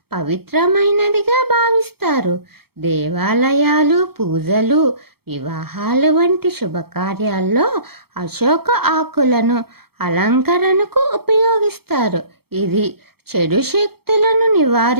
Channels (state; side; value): late; left; 0.96 ms